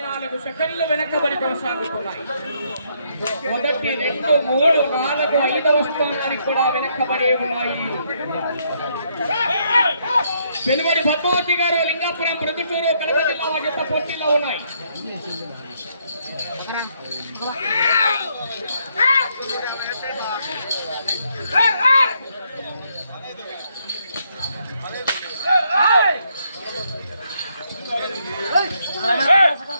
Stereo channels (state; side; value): inverted; both; correlation -0.73